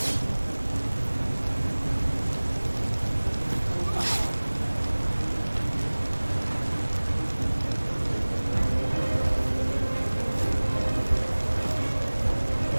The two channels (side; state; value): both; inverted; correlation -1.00